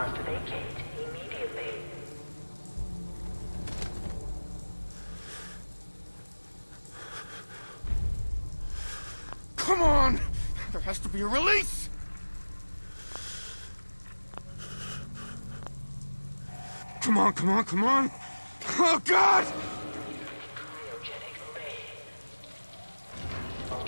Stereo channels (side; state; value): both; inverted; correlation -1.00